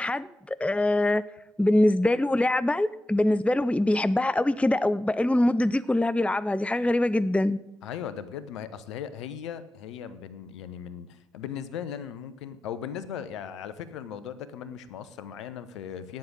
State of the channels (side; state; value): both; normal; correlation 0.93